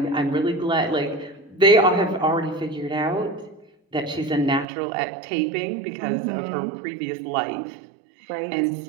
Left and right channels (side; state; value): left; drops out; at 4.7 s